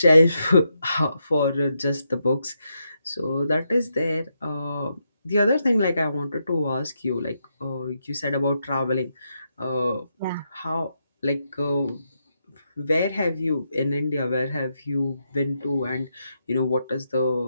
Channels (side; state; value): both; inverted; correlation -0.82